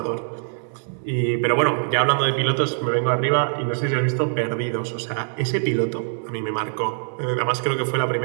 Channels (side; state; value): left; silent; digital silence